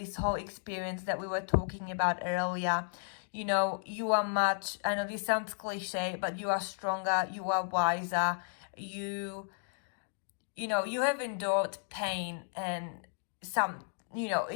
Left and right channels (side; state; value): right; silent; digital silence